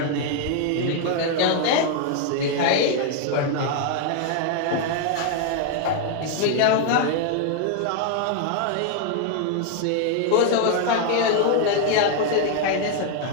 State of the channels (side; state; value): both; different; correlation 0.00